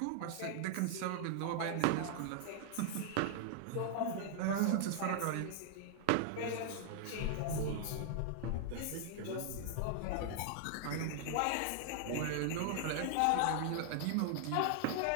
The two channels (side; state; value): both; different; correlation 0.00